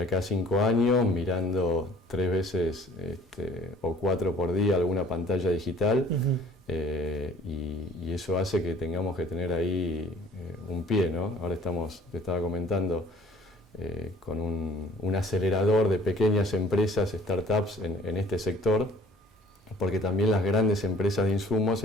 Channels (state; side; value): normal; both; correlation 0.53